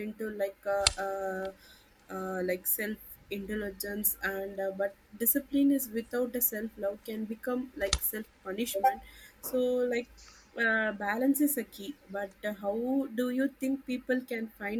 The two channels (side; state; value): both; identical; correlation 1.00